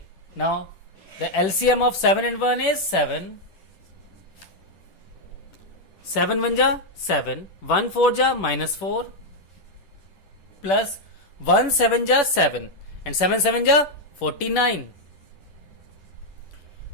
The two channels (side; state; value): right; late; 10 ms